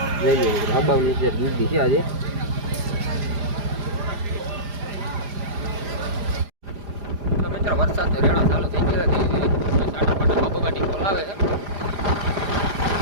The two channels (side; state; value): left; late; 4.9 ms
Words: જઈ લે મિત્રો હબાવની ટ્રેક દીધી છે આજે. તો મિત્રો વરસાદ તો રેડા ચાલુ થઈ ગયા ધીરે ધીરે. સાટા પાટા બબગાટી બોલાવે છે.